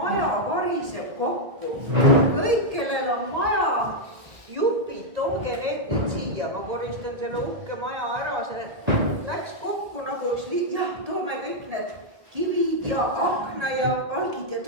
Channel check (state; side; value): late; left; 1.7 ms